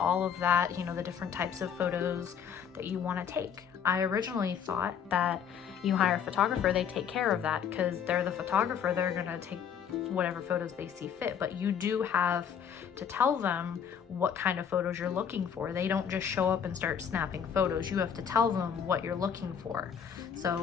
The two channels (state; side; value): quieter; right; 7.8 dB